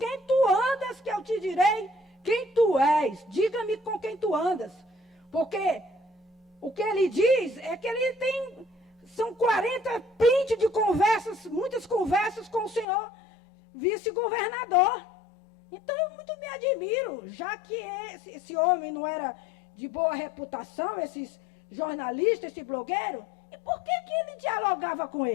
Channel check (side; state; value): right; drops out; at 12.9 s